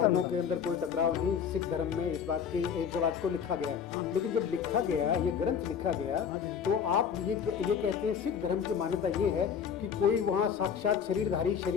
के अंदर कोई टकराव नहीं। सिख धर्म में इस बात को लिखा गया है, लेकिन जब लिखा गया, ये ग्रंथ लिखा गया, तो आप ये कहते हैं सिख धर्म की मान्यता ये है कि कोई वहाँ साक्षात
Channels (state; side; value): quieter; right; 7.4 dB